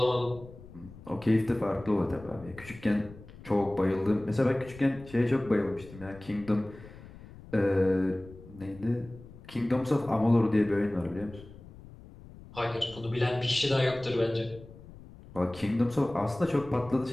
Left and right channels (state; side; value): noise; left; rumble, 18 dB below the sound